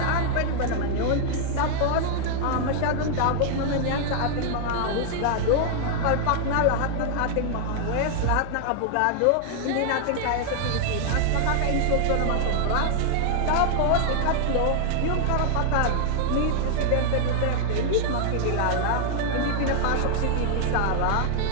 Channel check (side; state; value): both; different; correlation 0.00